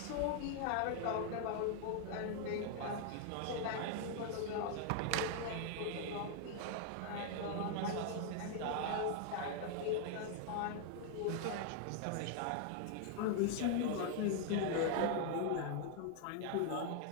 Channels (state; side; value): different; both; correlation 0.00